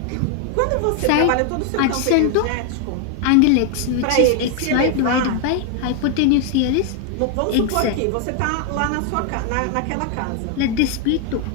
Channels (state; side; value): different; both; correlation 0.00